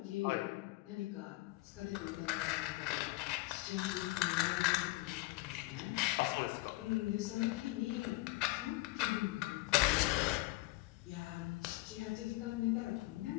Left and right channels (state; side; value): quieter; right; 20.9 dB